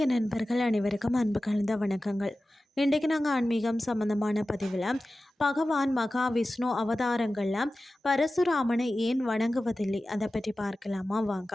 நண்பர்கள் அனைவருக்கும் அன்பு கலந்த வணக்கங்கள். இன்றைக்கு நாங்கள் ஆன்மீகம் சம்பந்தமான பதிவில் பகவான் மகாவிஷ்ணு அவதாரங்களில் பரசுராமனை ஏன் வணங்குவதில்லை அதை பற்றி பார்க்கலாமா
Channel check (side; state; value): both; normal; correlation 0.95